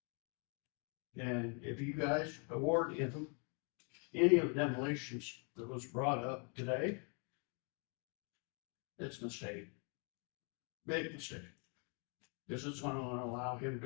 And if you guys award him any of the demolitions that was brought up today, it's a mistake. Big mistake. This is gonna allow him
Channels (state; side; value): quieter; right; 37.6 dB